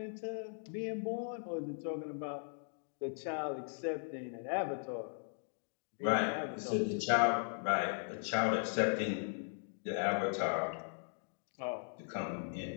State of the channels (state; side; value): silent; right; digital silence